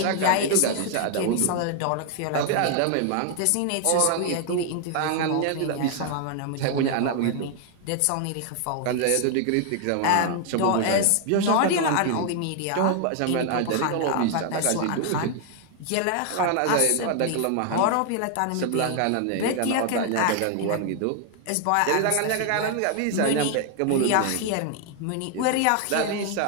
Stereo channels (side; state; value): both; different; correlation 0.00